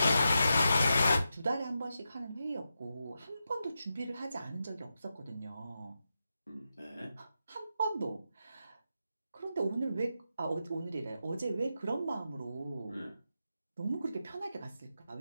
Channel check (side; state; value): both; inverted; correlation -0.88